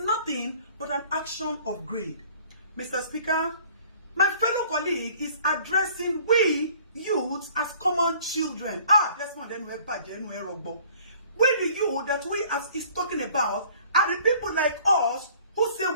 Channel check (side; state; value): both; inverted; correlation -0.53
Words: nothing but an action of greed. Mr. Speaker, my fellow colleague is addressing we youths as common children. That's not then we're bad, then we're wrong. We the youth that we as is talking about are the people like us who say